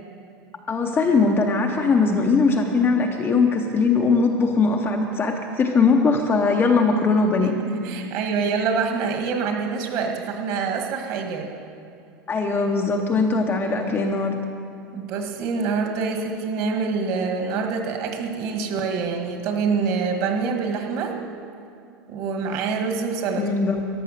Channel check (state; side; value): normal; both; correlation 0.44